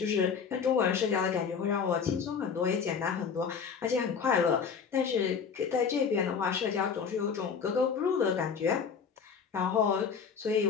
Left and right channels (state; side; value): quieter; right; 6.3 dB